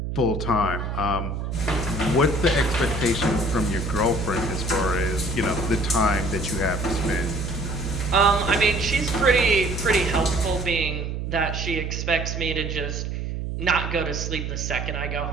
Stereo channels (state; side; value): noise; right; hum, 4 dB below the sound